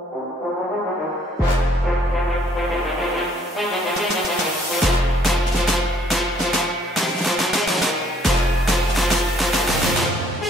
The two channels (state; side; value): normal; both; correlation 0.64